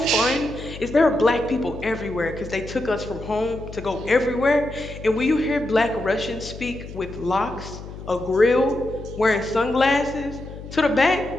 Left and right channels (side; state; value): left; noise; hum, 12 dB below the sound